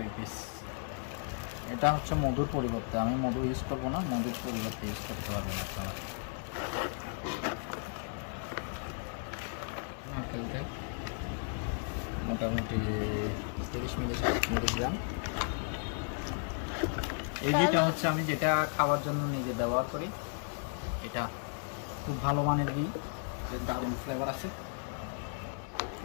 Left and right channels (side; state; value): right; silent; 55 dB below the other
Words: পিস। এটা হচ্ছে মধুর পরিবর্তে, আমি মধু ইউজ করবো না, মধুর পরিবর্তে ইউজ করতে হবে আপনারা। নারকেলতে মোটামুটি 30 মিলিগ্রাম। এই ঘিটা হচ্ছে আমি যেটা খাওয়ার জন্য নিজে ব্যবহার করি, এটা খুব ভালো মানের ঘি, দারুণ ফ্লেভার আছে।